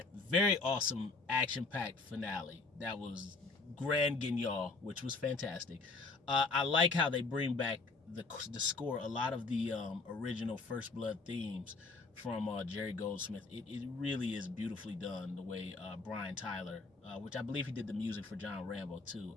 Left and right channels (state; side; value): quieter; right; 3.9 dB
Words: very awesome action-packed finale, that was Grand Guignol, which was fantastic. I like how they bring back the score, a lot of the original First Blood themes from Jerry Goldsmith. It really is beautifully done, the way Brian Tyler, which I believe he did the music for John Rambo too.